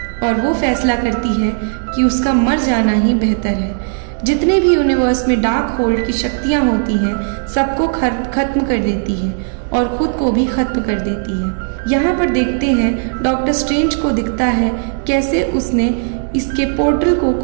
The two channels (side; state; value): left; silent; 69 dB below the other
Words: और वो फैसला करती है कि उसका मर जाना ही बेहतर है। जितने भी यूनिवर्स में डार्क होल्ड की शक्तियाँ होती हैं, सबको खत्म कर देती है और खुद को भी खत्म कर देती है। यहाँ पर देखते हैं डॉक्टर स्ट्रेंज को दिखता है कैसे उसने इसके पोर्टल को